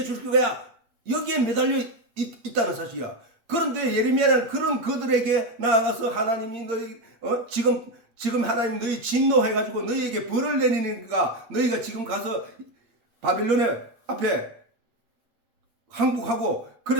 거야. 여기에 매달려 있다는 사실이야. 그런데 예레미야는 그런 그들에게 나아가서 하나님이 너희 지금 하나님 너희 진노해가지고 너희에게 벌을 내리니까 너희가 지금 가서 바빌론의 앞에 항복하고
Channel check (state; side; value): late; left; 8.7 ms